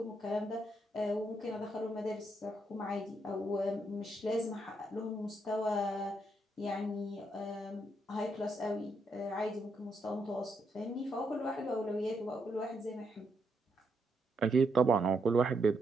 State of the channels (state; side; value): normal; both; correlation 0.78